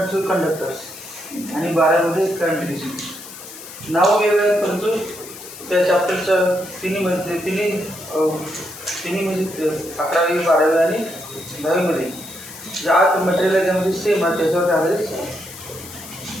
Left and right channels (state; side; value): noise; left; hiss, 14 dB below the sound